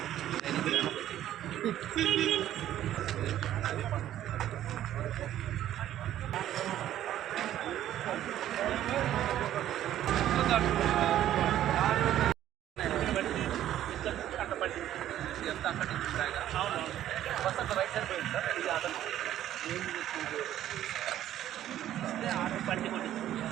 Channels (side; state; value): left; quieter; 12.2 dB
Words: అక్కడి నుంచి బస్ అంతా రైట్ సైడ్ పోయింది సార్. ఇది ఆటో